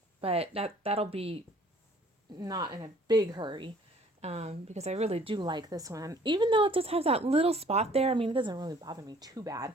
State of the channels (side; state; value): both; normal; correlation 0.56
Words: but that'll be not in a big hurry because I really do like this one. Even though it just has that little spot there, I mean, it doesn't really bother me too bad.